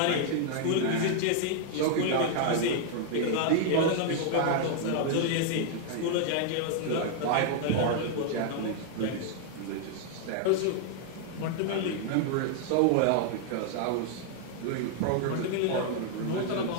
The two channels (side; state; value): both; different; correlation 0.00